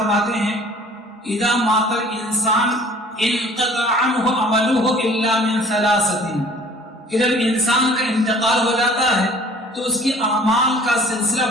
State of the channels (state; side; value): normal; both; correlation 0.50